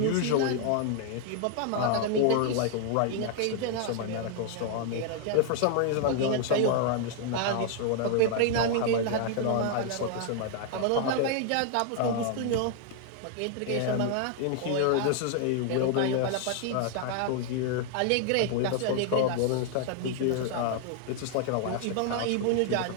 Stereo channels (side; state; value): both; different; correlation 0.00